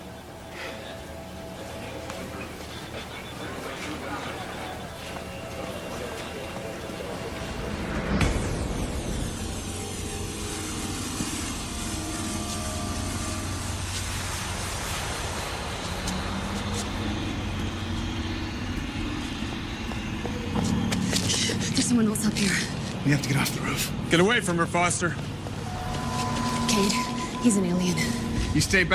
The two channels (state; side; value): identical; both; correlation 1.00